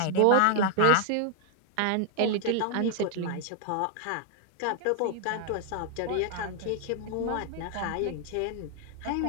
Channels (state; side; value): different; both; correlation 0.00